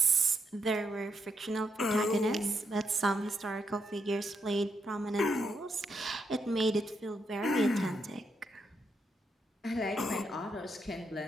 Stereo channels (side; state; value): both; normal; correlation 0.80